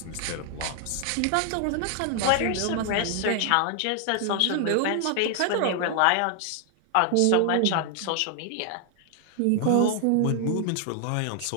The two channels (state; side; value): different; both; correlation 0.00